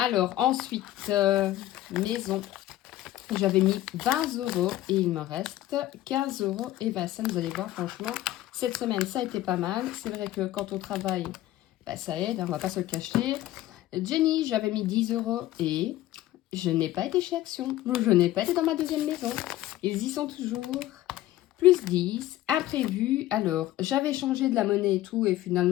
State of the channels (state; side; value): quieter; right; 14.9 dB